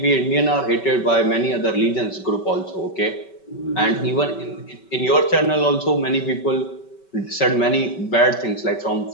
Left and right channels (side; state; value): right; late; 5.2 ms